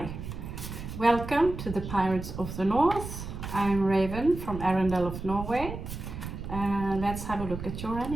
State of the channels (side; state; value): right; noise; rumble, 8 dB below the sound